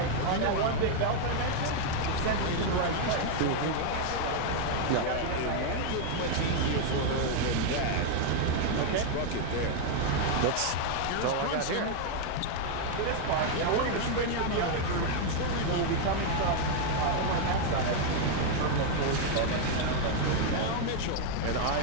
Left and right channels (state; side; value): different; both; correlation 0.00